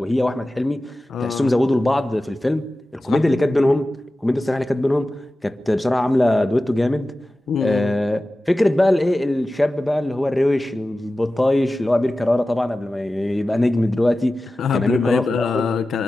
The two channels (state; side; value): normal; both; correlation 0.95